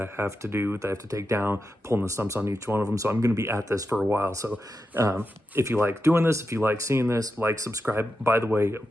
have to do, that I have to take down, pulling the stumps on each one of them. So I'm going to be at this for a while. So if you like doing this, if you like seeing this, like, subscribe. By the way,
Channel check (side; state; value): both; normal; correlation 0.89